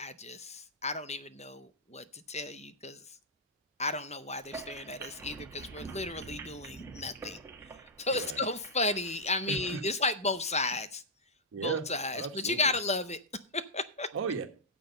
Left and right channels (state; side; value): normal; both; correlation -0.09